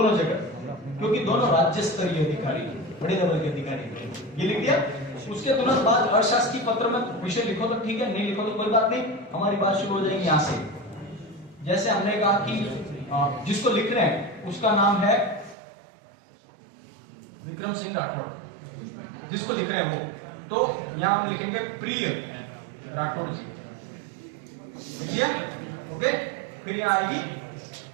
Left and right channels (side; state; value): left; drops out; at 15.6 s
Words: जगह, क्योंकि दोनों राज्य स्तरीय अधिकारी, बड़े लेवल के अधिकारी। ये लिख दिया। उसके तुरंत बाद अशासकीय पत्र में विषय लिखो तो ठीक है, नहीं लिखो तो कोई बात नहीं। हमारी बात शुरू हो जाएगी यहाँ से। जैसे हमने कहा कि जिसको लिख रहे हैं उसका नाम है विक्रम सिंह राठौड़, जिसको लिख रहे हैं वो, तो यहां हम लिखेंगे प्रिय राठौड़ जी, लिख ओके। फिर यहां आएगी